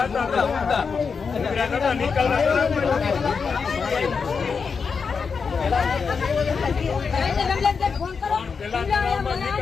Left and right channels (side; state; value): right; quieter; 5.5 dB